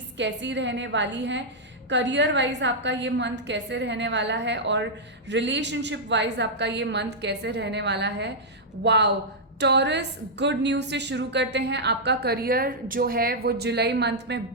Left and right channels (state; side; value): normal; both; correlation -0.07